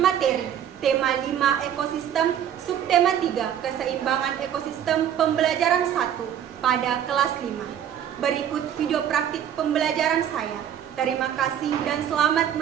tema 5 ekosistem, subtema 3 keseimbangan ekosistem pembelajaran 1 pada kelas 5. Berikut video praktik pembelajaran saya. Terima kasih dan selamat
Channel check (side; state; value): left; quieter; 9.8 dB